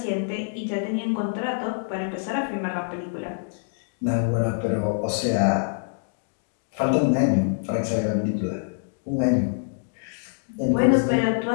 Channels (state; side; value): silent; right; digital silence